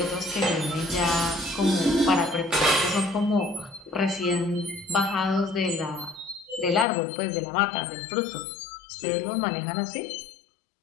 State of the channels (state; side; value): drops out; right; at 6.9 s